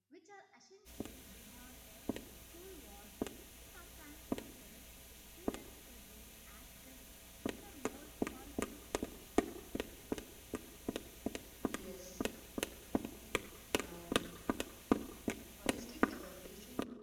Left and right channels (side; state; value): both; identical; correlation 1.00